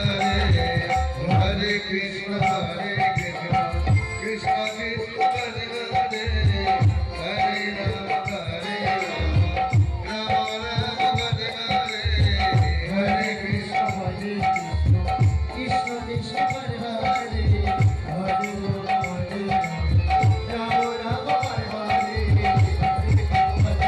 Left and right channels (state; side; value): identical; both; correlation 1.00